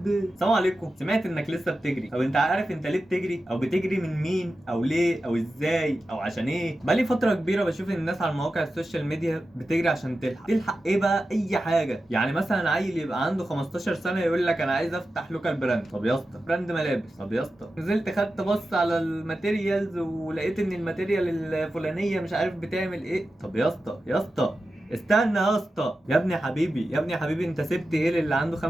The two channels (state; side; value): normal; both; correlation 0.92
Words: السلام عليكم، سمعت انك لسه بتجري. طب انت عارف انت ليه بتجري؟ او بتجري من مين؟ او ليه؟ او ازاي؟ او عشان ايه؟ بقالي فترة كبيرة بشوف الناس على مواقع السوشيال ميديا بتجري عشان تلحق ايه بقى؟ اي حاجة. يعني مثلا عيل يبقى عنده 15 سنة يقول لك انا عايز افتح لوكال براند. طب يا اسطى براند ملابس. طب يا اسطى نزلت خدت بص على الماتيريالز ولقيت ان الماتيريال الفلانية مش عارف بتعمل ايه. طب يا اسطى يا اسطى استنى يا اسطى، يا ابني حبيبي يا ابني حبيبي، انت سبت ايه اللي عنده